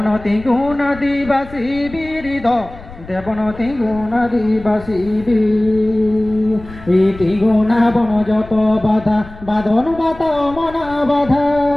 गुना दिवासी बीरिद देवनती गुना दिवासी भी इति गुना बन যত বাধা বাঁধন বাতা মনা বাধা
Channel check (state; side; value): noise; left; rumble, 17 dB below the sound